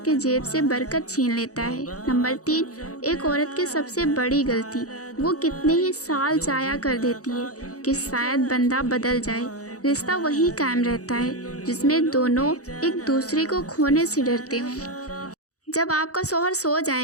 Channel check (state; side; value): late; right; 0.66 ms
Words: کے جیب سے برکت چھین لیتا ہے۔ نمبر 3، ایک عورت کی سب سے بڑی غلطی وہ کتنے ہی سال ضائع کر دیتی ہے کہ شاید بندہ بدل جائے، رشتہ وہی قائم رہتا ہے جس میں دونوں ایک دوسرے کو کھونے سے ڈرتے ہوں۔ جب آپ کا شوہر سو